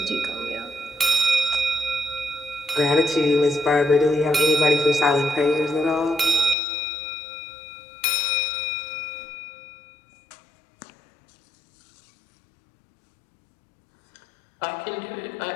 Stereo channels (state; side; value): drops out; right; at 6.6 s